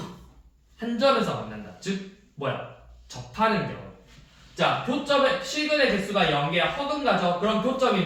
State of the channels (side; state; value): both; identical; correlation 1.00